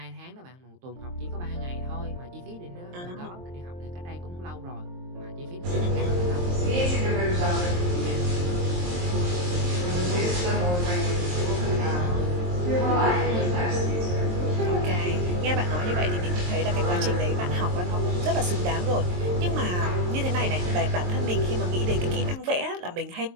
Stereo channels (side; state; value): left; late; 23 ms